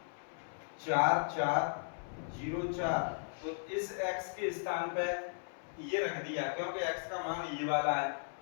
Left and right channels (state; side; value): silent; right; 54 dB below the other